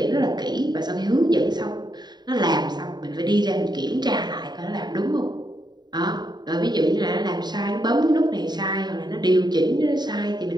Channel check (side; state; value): left; late; 0.20 ms